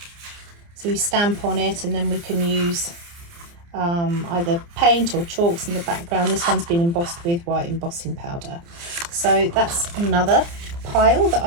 So we stamp on it, and then we can use either paint or chalks in the background. This one's been embossed with white embossing powder. So that's another pile that I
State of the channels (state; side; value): late; left; 29 ms